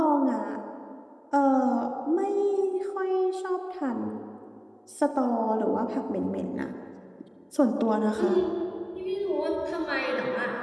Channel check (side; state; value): both; identical; correlation 1.00